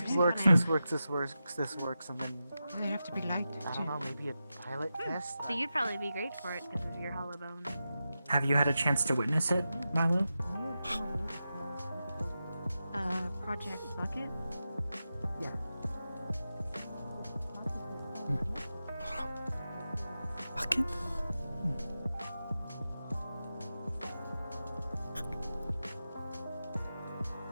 is for works, someone. this works, this works, this works, and then They have to be light. I don't know, maybe a pilot test. So you'd probably be great for it because of your hollow bone. Have you had a chance to witness it, Milo? Project Bucket? Yeah. Bucket?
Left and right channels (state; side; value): inverted; both; correlation -0.91